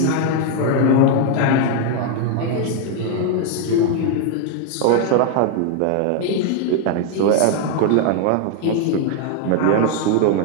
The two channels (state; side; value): different; both; correlation 0.00